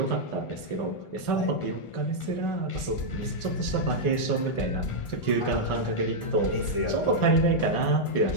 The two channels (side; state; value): right; late; 1.4 ms